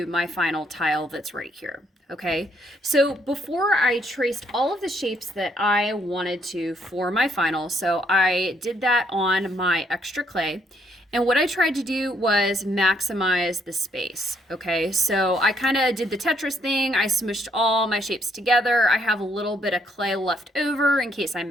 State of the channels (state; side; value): normal; both; correlation 0.71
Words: my final tile that's right here. Okay, so before I traced all of the shapes that I wanted to for my final, so I did that on my extra clay. And what I tried to do was maximize the space. Okay, so I kind of did the Tetris thing. I smushed all my shapes together. I have a little bit of clay left over in case I